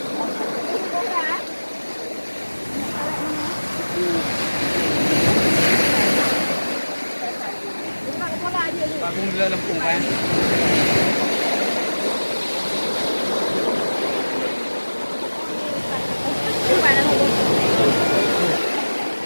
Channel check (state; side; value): inverted; both; correlation -1.00